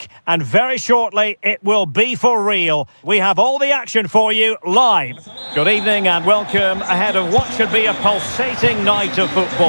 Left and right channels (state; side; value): inverted; both; correlation -1.00